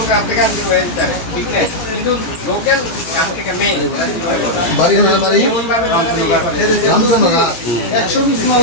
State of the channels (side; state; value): right; late; 18 ms